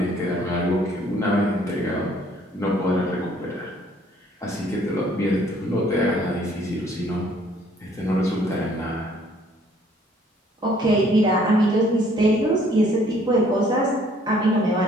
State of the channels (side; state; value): both; normal; correlation 0.61